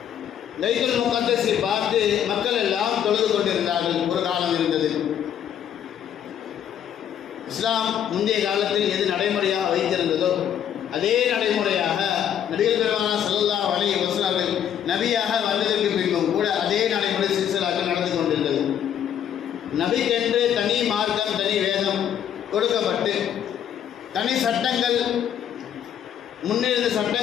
பைத்துல் முகத்தஸை பார்த்து மக்கள் எல்லாம் தொழுது கொண்டிருந்தார்கள். ஒரு காலம் இருந்தது. இஸ்லாம் முந்தைய காலத்தில் எது நடைமுறையாக வைத்திருந்ததோ அதே நடைமுறையாக நபிகள் பெருமானார் ஸல்லல்லாஹு அலைஹி வஸல்லம் அவர்கள் நபியாக வந்ததற்கு பின்பும் கூட அதே நடைமுறை சில்சிலாக்கள் நடந்து கொண்டிருந்தது. நபிக்கென்று தனி மார்க்கம், தனி வேதம் கொடுக்கப்பட்டு தனி சட்டங்கள், முன்னிருந்த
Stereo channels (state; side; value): quieter; right; 9.6 dB